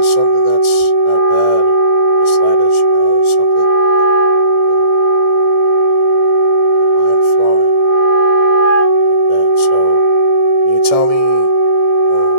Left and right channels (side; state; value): left; late; 1.6 ms